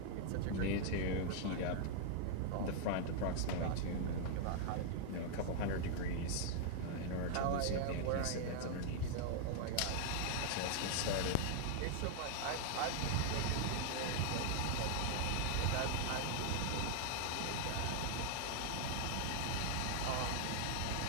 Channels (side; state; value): both; different; correlation 0.00